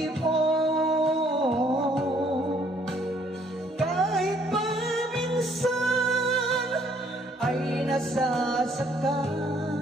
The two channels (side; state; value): both; normal; correlation 0.64